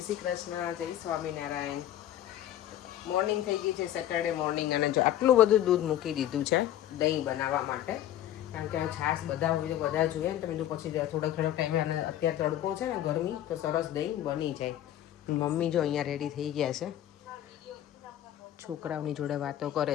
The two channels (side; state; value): right; quieter; 12.1 dB